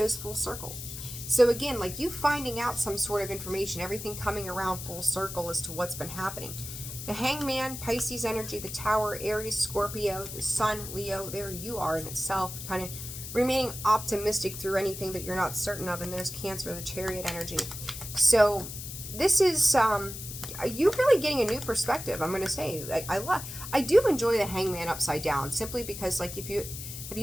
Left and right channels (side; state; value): left; noise; hiss, 9 dB below the sound